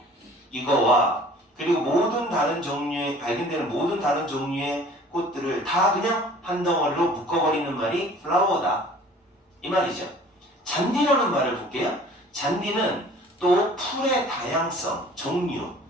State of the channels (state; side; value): normal; both; correlation 0.49